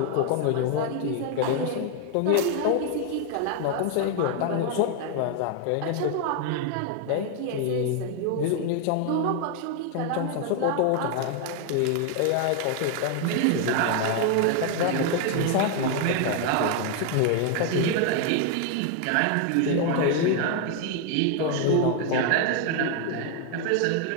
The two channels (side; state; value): both; different; correlation 0.01